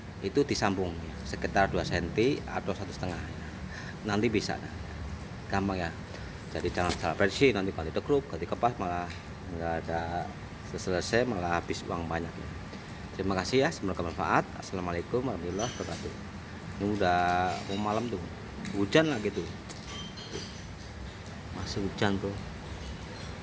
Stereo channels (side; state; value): both; identical; correlation 1.00